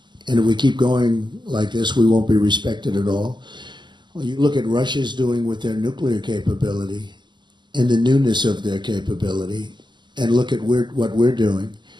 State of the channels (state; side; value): late; left; 0.22 ms